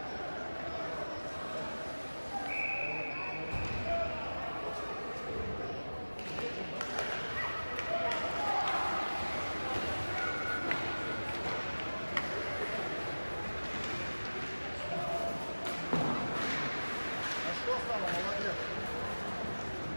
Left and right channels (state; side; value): inverted; both; correlation -1.00